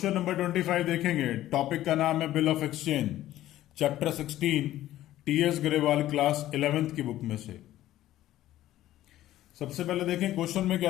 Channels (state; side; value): quieter; right; 14.1 dB